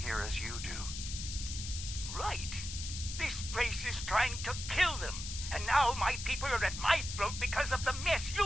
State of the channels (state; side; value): noise; left; hiss, 7 dB below the sound